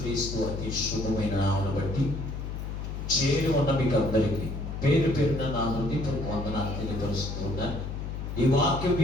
అతి శుభమైన నామమును బట్టి చేరి ఉన్న మీకు అందరికీ పేరు పేరున నా హృదయపూర్వక వందనాలు తెలియపరుస్తూ ఉన్నాను. ఈ వాక్యం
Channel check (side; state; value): left; noise; hum, 5 dB below the sound